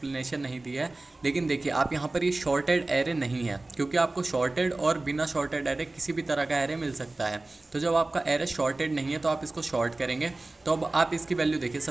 नहीं दी है। लेकिन देखिए आप यहाँ पर ये शॉर्टेड एरे नहीं है, क्योंकि आपको शॉर्टेड और बिना शॉर्टेड एरे किसी भी तरह का एरे मिल सकता है। तो जब आपका एरे शॉर्टेड नहीं है तो आप इसको शॉर्ट करेंगे। तो अब आप इसकी वैल्यू देखिए,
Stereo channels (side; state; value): left; quieter; 3.0 dB